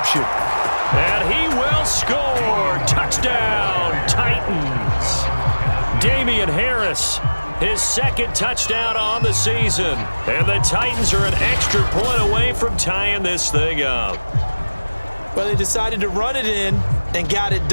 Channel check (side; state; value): both; inverted; correlation -1.00